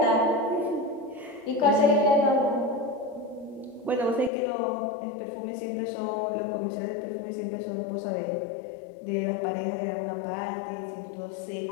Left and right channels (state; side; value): drops out; right; at 4.3 s